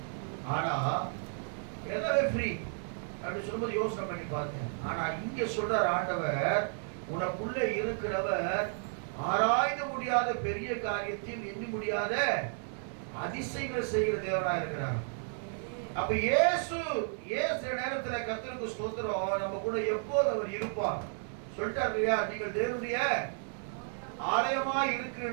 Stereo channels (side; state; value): left; silent; 56 dB below the other